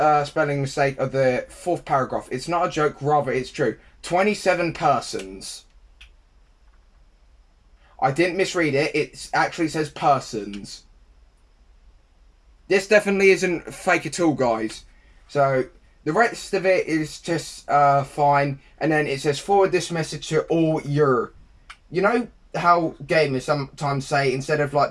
spelling mistake of the 4th paragraph. It's not a joke, rather it's true. 27 persons. I didn't misread it. It actually says persons. This definitely isn't fake at all, guys. So, the rest of it is just fine. And then it says, forward this message to all your... You know how gamers sometimes say, instead of like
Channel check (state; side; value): identical; both; correlation 1.00